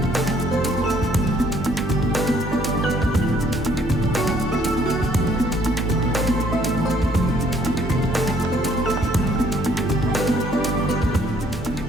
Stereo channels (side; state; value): both; normal; correlation 0.63